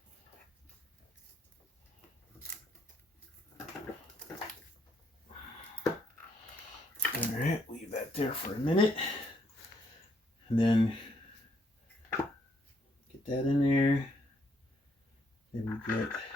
All right, leave that there for a minute. And then get that in there. Then we get,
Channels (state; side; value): normal; both; correlation 0.72